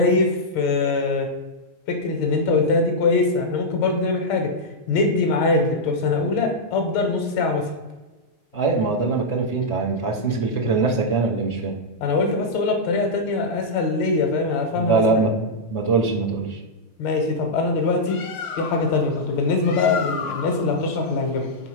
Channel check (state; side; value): late; right; 6.5 ms